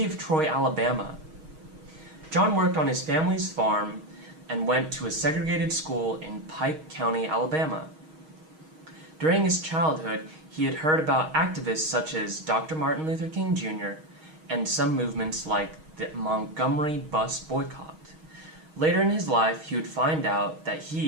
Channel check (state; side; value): late; left; 6.4 ms